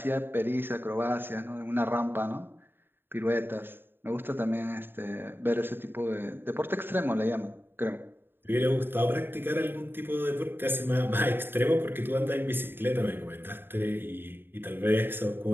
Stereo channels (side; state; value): left; late; 0.10 ms